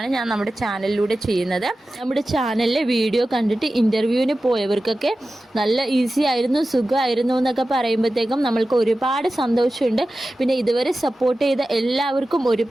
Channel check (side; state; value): both; normal; correlation 0.94